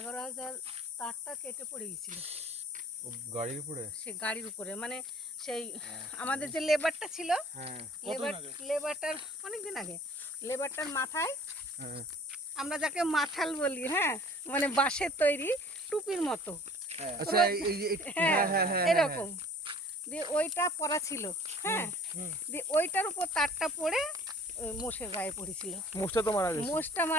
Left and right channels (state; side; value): normal; both; correlation 0.50